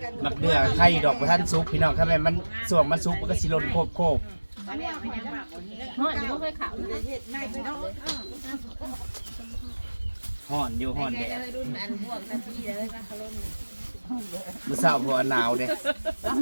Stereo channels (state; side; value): inverted; both; correlation -1.00